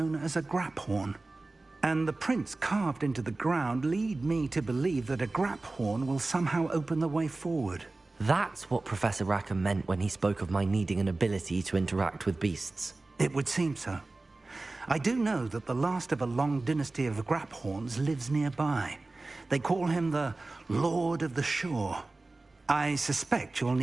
as a graphorn. And the prints carved into the ground lead me to believe that a graphorn will somehow open the way forward. That's what Professor Rackham meant when he spoke of my needing an ability to interact with beasts. It would seem so. I do know that the last of a long dynasty of graphorns lives nearby. They call him the Lord of the Shore. I suspect you'll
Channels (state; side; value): quieter; left; 3.2 dB